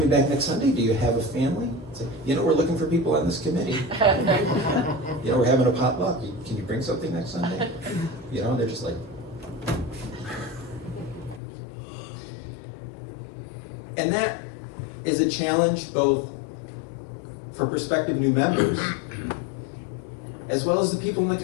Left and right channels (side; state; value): right; drops out; at 11.4 s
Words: back next Sunday? Do you have a family? It's like, we're looking for people on this committee. We're having a potluck. Can you bring something next Sunday? They're just like. And that is a challenge both for prospective new members as well as the people in the